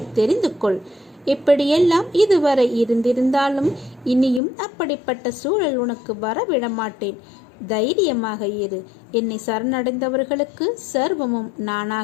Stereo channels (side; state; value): right; drops out; at 4.4 s